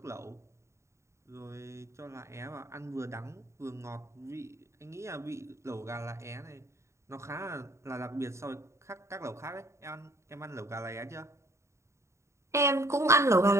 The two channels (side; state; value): left; late; 0.14 ms